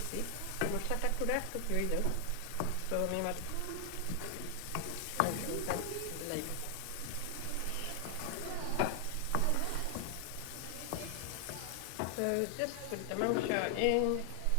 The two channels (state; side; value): different; both; correlation 0.00